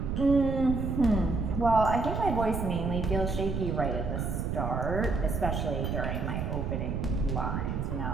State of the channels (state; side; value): noise; right; rumble, 2 dB below the sound